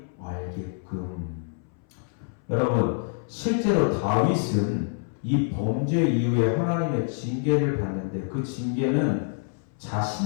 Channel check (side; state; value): right; silent; 59 dB below the other